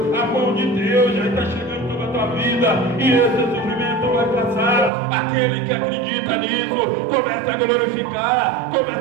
a mão de Deus já está chegando sobre a tua tua vida, e esse sofrimento vai passar. Aquele que acredita nisso, começa a glorificar,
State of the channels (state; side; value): drops out; left; at 4.9 s